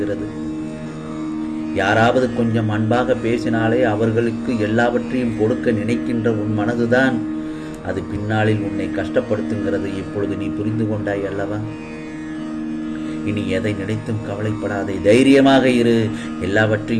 யாராவது கொஞ்சம் அன்பாக பேசினாலே அவர்களுக்கு எல்லாவற்றையும் கொடுக்க நினைக்கின்ற உன் மனதுதான் அது பின்னாளில் உன்னை கஷ்டப்படுத்துங்கிறது. இப்பொழுது நீ புரிந்து கொண்டாய் அல்லவா? இனி எதை நினைத்தும் கவலைப்படாதே, தைரியமாக இரு.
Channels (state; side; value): identical; both; correlation 1.00